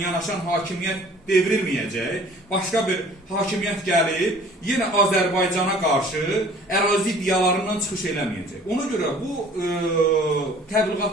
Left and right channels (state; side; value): normal; both; correlation 0.51